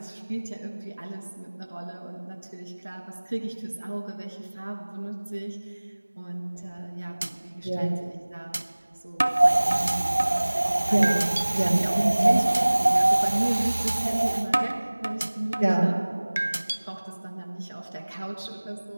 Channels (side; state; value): both; inverted; correlation -1.00